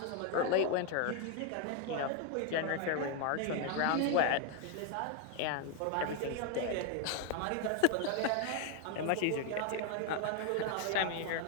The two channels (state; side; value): different; both; correlation 0.01